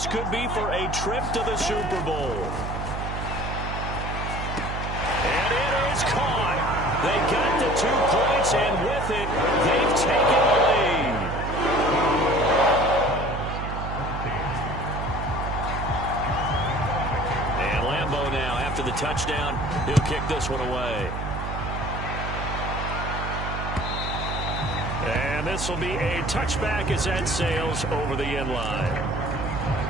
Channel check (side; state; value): right; noise; hum, 5 dB below the sound